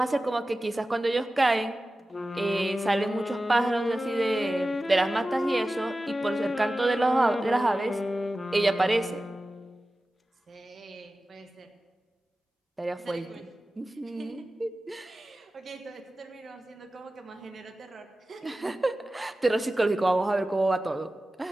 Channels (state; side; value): normal; both; correlation 0.95